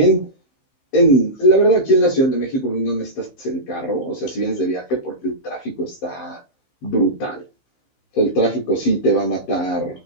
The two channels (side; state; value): right; late; 15 ms